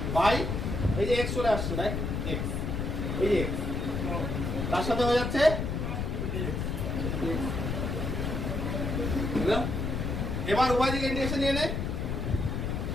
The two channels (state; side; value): noise; left; rumble, 1 dB below the sound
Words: by, এই যে এক্স চলে আসছে, দেখ এক্স, এই যে এক্স, তার সাথে হয়ে যাচ্ছে এবার উভয় দিকে ইন্টিগ্রেশন নিয়ে নে।